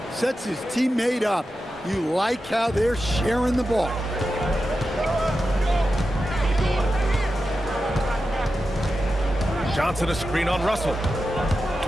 Sets his teammate up. You like how they're sharing the ball. Johnson a screen on Russell.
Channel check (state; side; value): normal; both; correlation 0.91